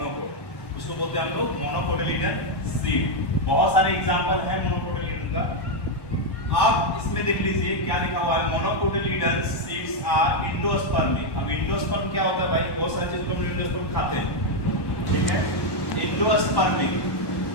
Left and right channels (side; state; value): right; late; 1.1 ms